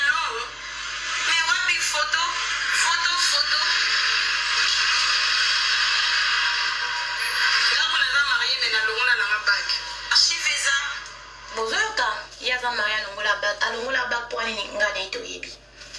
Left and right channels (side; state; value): both; identical; correlation 1.00